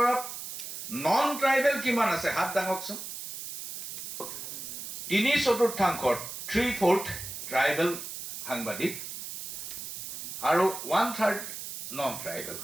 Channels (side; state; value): right; noise; hiss, 8 dB below the sound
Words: নন ট্ৰাইবেল কিমান আছে? হাত দাঙকচোন। 3/4 3/4 ট্ৰাইবেল সাংবাদিক আৰু 1/3 নন ট্ৰাইবেল